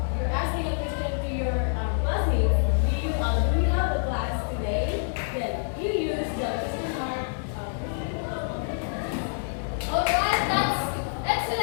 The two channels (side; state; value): right; silent; digital silence